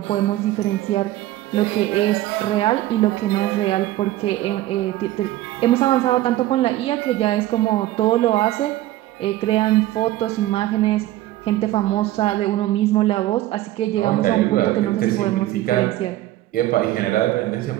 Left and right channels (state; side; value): quieter; left; 15.2 dB